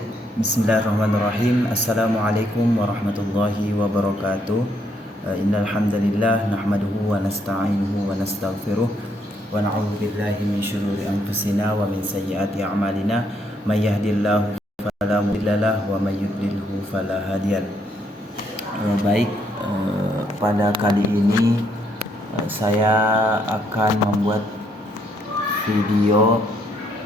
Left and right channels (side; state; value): both; normal; correlation 0.72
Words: Bismillahirrahmanirrahim. Assalamualaikum warahmatullahi wabarakatuh. Innal hamdalillah nahmaduhu wa nasta'inuhu wa nastaghfiruh wa na'udzu billahi min syururi anfusina wa min sayyiati a'malina. May yahdihillahu fala mudhillalah wa may yudlilhu fala hadiyalah. Baik, pada kali ini saya akan membuat video